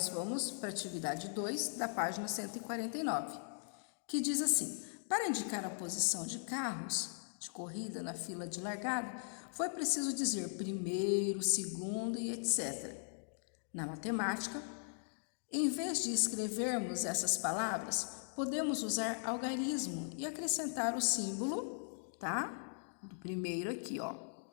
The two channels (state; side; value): silent; right; digital silence